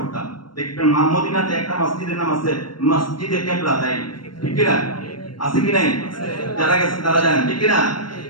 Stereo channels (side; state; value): right; late; 0.72 ms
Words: দেখবেন মদিনাতে একটা মসজিদের নাম আছে মসজিদে কিবলা, তাই ঠিক কি না? আছে কি নাই? যারা গেছেন তারা জানেন, ঠিক কি না?